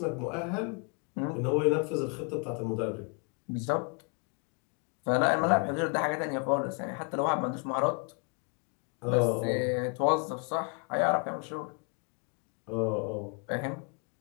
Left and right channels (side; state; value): right; quieter; 36.5 dB